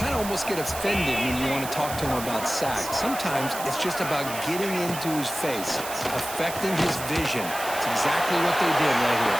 of almost get offended when you want to talk to him about sacks. Sometimes it's just about getting into his face, affecting his vision. It's exactly what they did right here.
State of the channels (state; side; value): noise; right; hiss, 9 dB below the sound